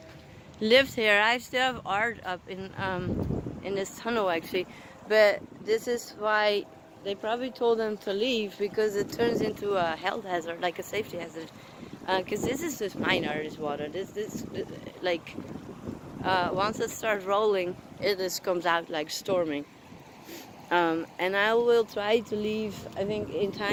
lived here. I still have art up in this tunnel actually, but this is why they probably told them to leave, because it turns into a health hazard, like a safety hazard. Because this is just minor, this water. This like once it starts rolling, it just comes out like storming. And I will try to leave, I think, in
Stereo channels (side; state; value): both; identical; correlation 1.00